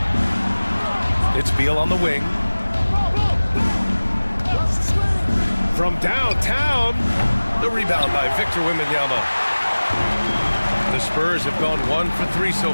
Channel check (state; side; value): inverted; both; correlation -1.00